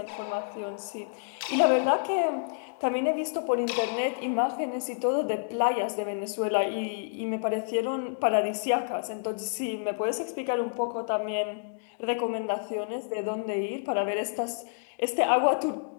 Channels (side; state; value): right; silent; digital silence